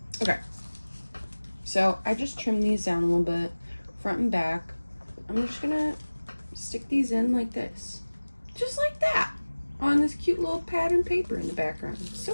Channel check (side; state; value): both; inverted; correlation -1.00